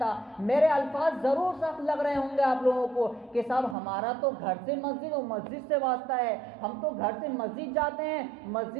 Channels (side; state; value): left; drops out; at 3.8 s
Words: میرے الفاظ ضرور سخت لگ رہے ہوں گے آپ لوگوں کو کہ صاحب ہمارا تو گھر سے مسجد اور مسجد سے واسطہ ہے، ہم تو گھر سے مسجد جاتے ہیں،